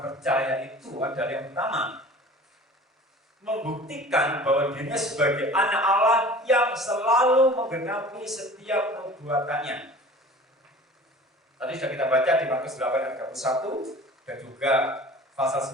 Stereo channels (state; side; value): normal; both; correlation 0.43